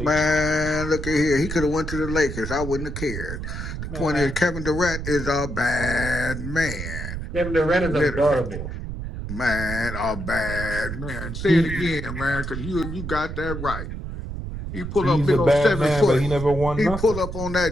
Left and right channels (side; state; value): right; noise; rumble, 6 dB below the sound